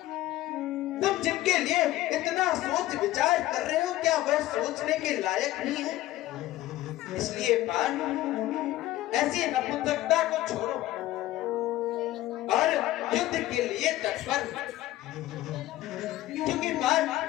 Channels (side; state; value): right; quieter; 15.7 dB